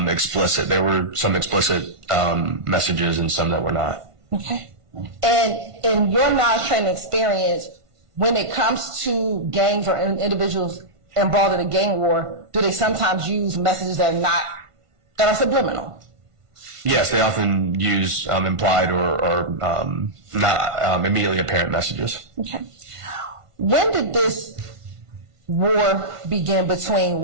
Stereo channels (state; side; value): late; left; 1.5 ms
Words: There were some explicit messages and some that were not. Okay. And in your knowledge, training, experience, when it comes to gangs or individuals involved in a gang war, do they sometimes use messages that are subliminal? Yes, they often use implied or not immediately apparent messages. Okay. When did this war begin between